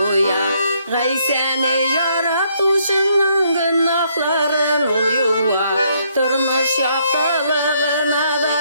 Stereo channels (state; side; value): inverted; both; correlation -0.70